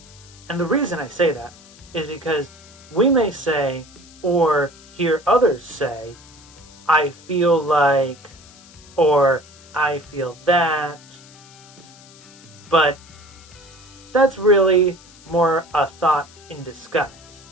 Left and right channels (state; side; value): noise; left; hiss, 23 dB below the sound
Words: And the reason I say that is because we may say, or hear others say, I feel like, or I feel that, but that's really more a thought in disguise,